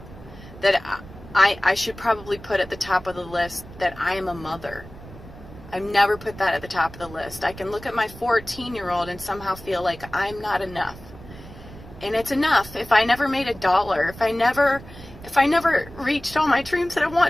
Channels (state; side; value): noise; right; rumble, 17 dB below the sound